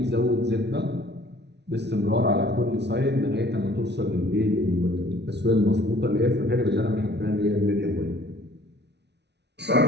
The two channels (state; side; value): late; left; 0.50 ms